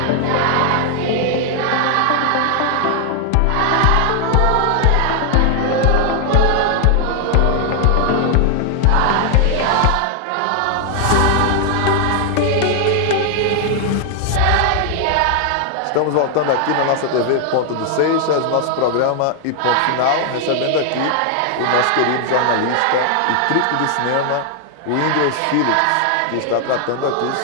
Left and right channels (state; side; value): different; both; correlation 0.00